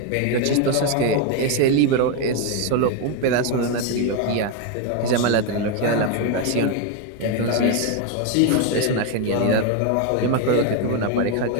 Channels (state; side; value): different; both; correlation 0.01